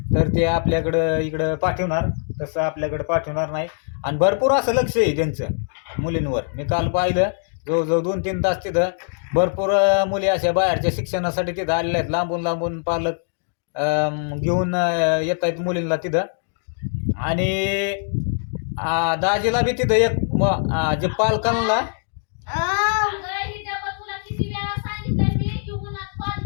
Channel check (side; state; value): right; silent; digital silence